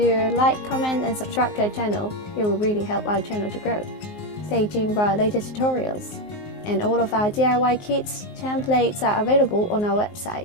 like, comment and subscribe to our channel. It will really help our channel to grow. Stay tuned for our latest tutorials. And all of our DIY kits, templates are available on our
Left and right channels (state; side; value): late; right; 19 ms